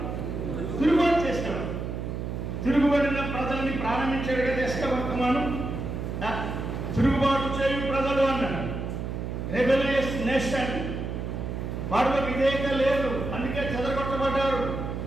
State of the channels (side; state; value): right; noise; hum, 4 dB below the sound